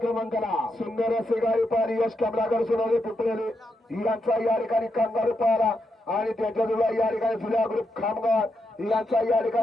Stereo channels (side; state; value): both; normal; correlation 0.83